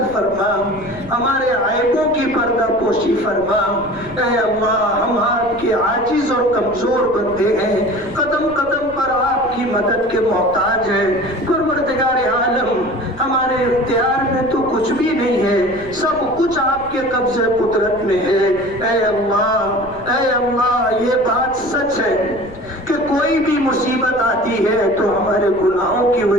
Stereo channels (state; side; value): noise; left; rumble, 20 dB below the sound